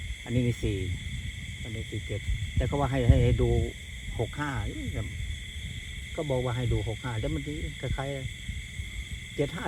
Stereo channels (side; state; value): both; identical; correlation 1.00